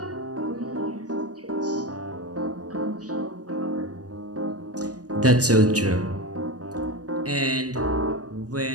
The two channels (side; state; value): left; late; 0.68 ms